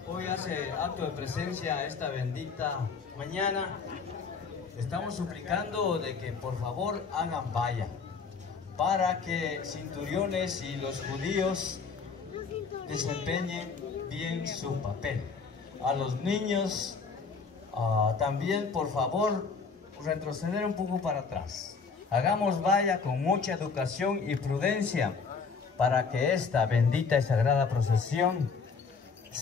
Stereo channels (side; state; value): right; quieter; 5.2 dB